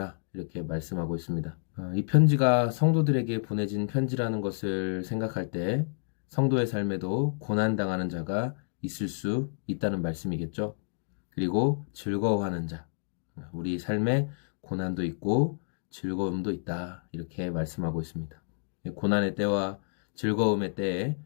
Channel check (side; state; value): right; silent; digital silence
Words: 이렇게 말씀하고 있습니다. 이 편지가 성도들에게 보내진 편지라는 것을 생각할 때 성도의 삶에도 고난당하는 자가 있을 수 있다는 말씀이겠죠. 그리고 즐거워하는 자, 우리 삶에 고난도 있고 즐거움도 있다. 이렇게 말씀하고 있습니다. 고난의 때와 즐거움의 때에